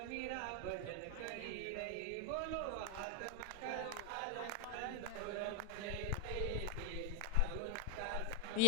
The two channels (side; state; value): both; different; correlation 0.00